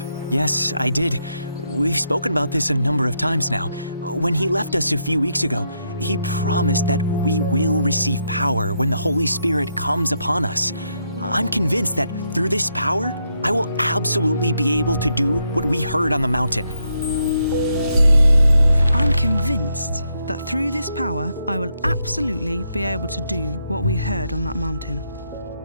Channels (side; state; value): both; inverted; correlation -0.78